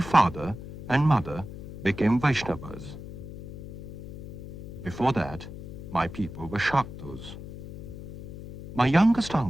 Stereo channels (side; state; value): left; noise; hum, 12 dB below the sound